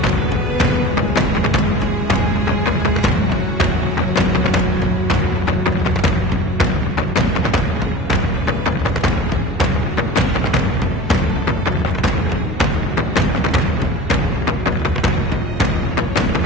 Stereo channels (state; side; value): normal; both; correlation 0.37